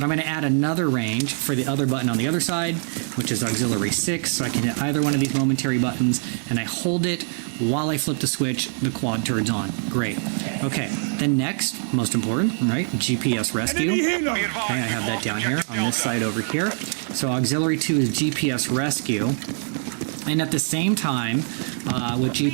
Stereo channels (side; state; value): left; silent; 58 dB below the other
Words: I'm going to add another range for the other button on the other side, which is auxiliary 6. So I can hit either one of these momentary buttons and I hold it while I flip the switch, the quad turns on. Great. Okay, then next, most important, right, GPS rescue. Okay, I have that down here on this side over here. So auxiliary 2 is GPS rescue. And at the same time, with